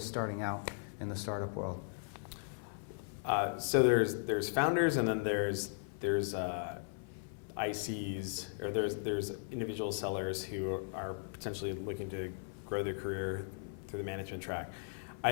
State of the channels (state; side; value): silent; right; 53 dB below the other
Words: starting out in the startup world? So there's founders, and then there's ICs, or there's individual sellers who are potentially looking to grow their career through the management track.